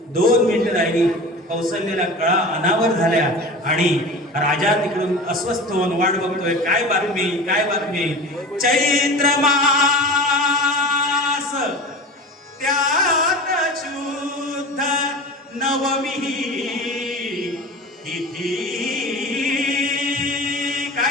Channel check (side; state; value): both; normal; correlation 0.34